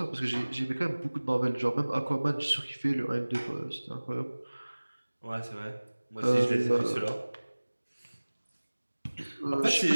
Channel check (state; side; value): inverted; both; correlation -1.00